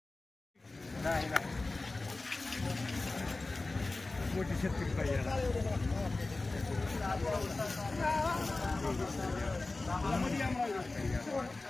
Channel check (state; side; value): quieter; right; 3.3 dB